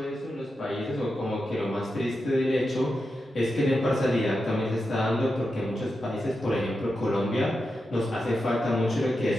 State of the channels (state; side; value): normal; both; correlation 0.89